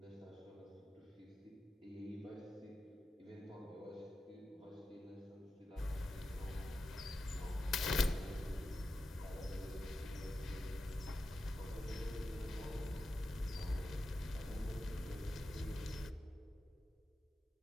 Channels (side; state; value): both; normal; correlation 0.91